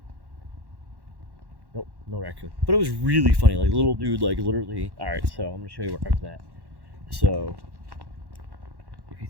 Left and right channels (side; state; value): left; late; 1.1 ms